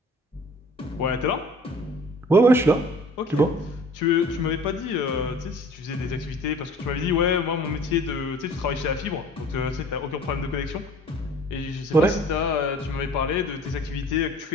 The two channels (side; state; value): both; normal; correlation 0.48